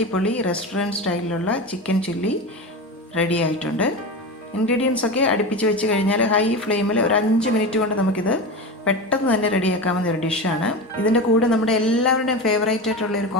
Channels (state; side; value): normal; both; correlation 0.24